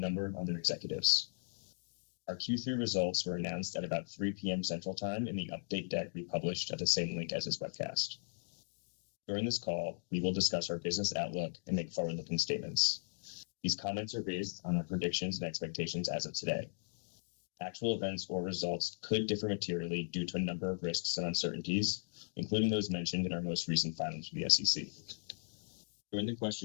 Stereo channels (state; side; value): silent; right; digital silence